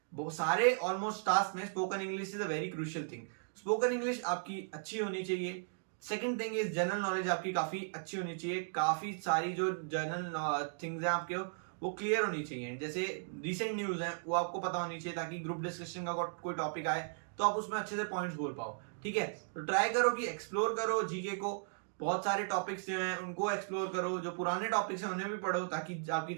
सारे ऑलमोस्ट टास्क में spoken English is a very crucial thing. Spoken English आपकी अच्छी होनी चाहिए। Second thing is general knowledge आपकी काफी अच्छी होनी चाहिए। काफी सारी जो जनरल थिंग्स हैं आपके वो क्लियर होनी चाहिए। जैसे रिसेंट न्यूज है वो आपको पता होनी चाहिए ताकि ग्रुप डिस्कशन का कोई टॉपिक आए तो आप उसमें अच्छे से पॉइंट्स बोल पाओ। ठीक है, तो ट्राई करो कि एक्सप्लोर करो जीके को। बहुत सारे टॉपिक्स जो हैं उनको एक्सप्लोर करो, जो पुराने टॉपिक्स हैं उन्हें भी पढ़ो ताकि आपकी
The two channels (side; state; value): left; silent; digital silence